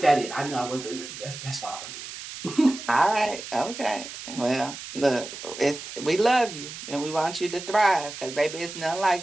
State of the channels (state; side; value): noise; right; hiss, 11 dB below the sound